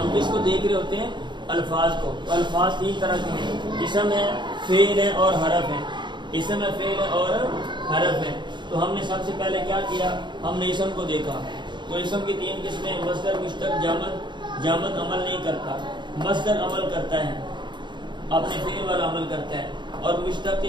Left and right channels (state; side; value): late; left; 0.22 ms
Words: کس کو دیکھ رہے ہوتے ہیں؟ الفاظ کو۔ تو الفاظ 3 طرح کے ہیں، اسم ہے، فعل ہے اور حرف ہے۔ اسم ہے، فعل ہے اور حرف ہے۔ تو ہم نے سب سے پہلے کیا کیا؟ ہم نے اسم کو دیکھا۔ تو اسم کی 3 قسمیں، مصدر، مشتق، جامد۔ جامد عمل نہیں کرتا، مصدر عمل کرتا ہے، اپنے فعل والا عمل کرتا ہے۔ اور مشتق